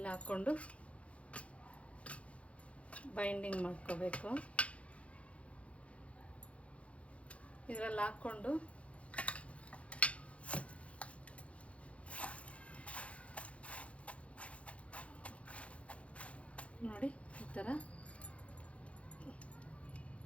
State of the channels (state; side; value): late; right; 0.063 ms